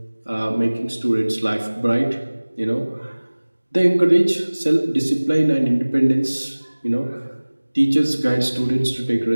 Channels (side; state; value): both; inverted; correlation -1.00